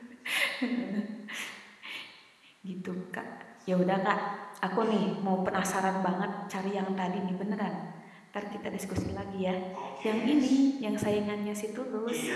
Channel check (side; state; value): both; identical; correlation 1.00